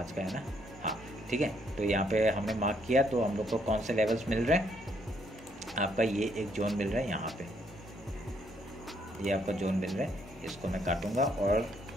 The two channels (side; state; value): both; normal; correlation 0.71